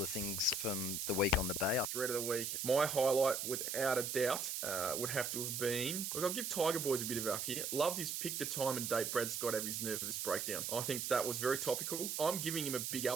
of things from the week on the Bay. Thread of the week. My highlight, without a doubt, would have to have been... Look, I'll give Tiger Boys a bit of up here. Loved his pick the time and date Brad Scott have his nervous breakdown. I think that was very topical. I'm giving him a big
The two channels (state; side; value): noise; right; hiss, 2 dB below the sound